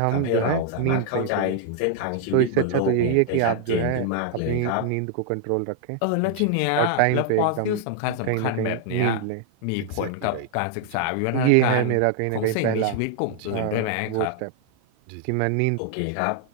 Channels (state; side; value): different; both; correlation 0.00